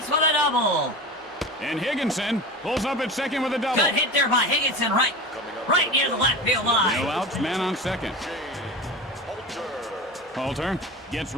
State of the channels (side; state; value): both; normal; correlation 0.30